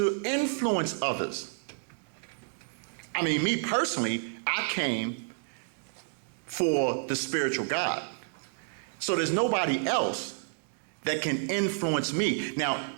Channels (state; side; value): silent; left; digital silence